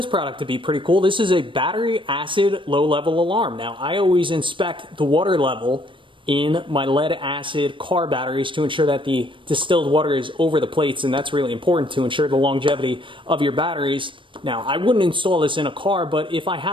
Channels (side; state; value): left; late; 0.24 ms